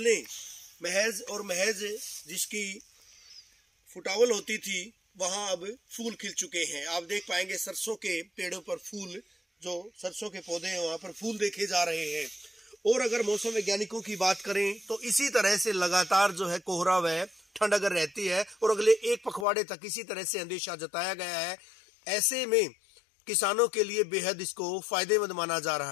महज और महज जिसकी फुटावल होती थी, वहां अब फूल खिल चुके हैं। आप देख पाएंगे सरसों के पेड़ों पर फूल, जो सरसों के पौधे हैं वहां पर फूल देखे जा रहे हैं। और अगर मौसम वैज्ञानिकों की बात करें तो इसी तरह से लगातार जो है कोहरा व ठंड अगर रहती है और अगले एक पखवाड़े तक इसी तरह से अंदेशा जताया गया है, ऐसे में किसानों के लिए बेहद इसको फायदेमंद माना जा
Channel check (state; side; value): drops out; right; at 19.5 s